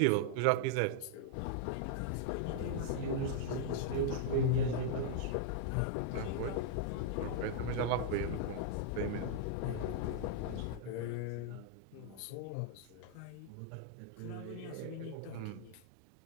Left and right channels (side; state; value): both; different; correlation -0.01